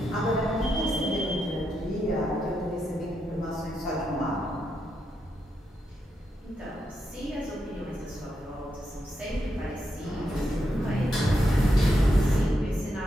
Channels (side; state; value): both; normal; correlation 0.83